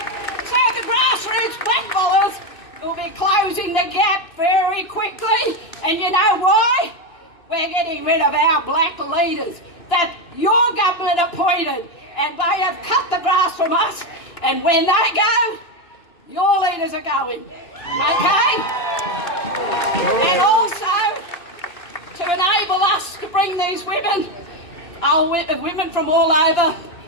So the grassroots blackballers will be closing the gap very quickly. And you know why? We're getting rid of our black leaders that your government appointed. And they have cut the grass from us. And when they go, your leaders are going. Okay? And also, to enable us to bring these women, women from all over,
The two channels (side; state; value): right; late; 2.9 ms